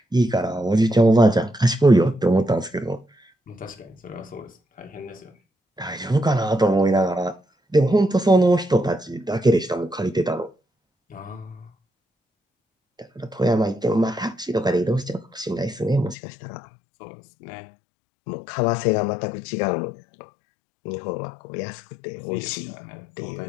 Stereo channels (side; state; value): right; drops out; at 16.2 s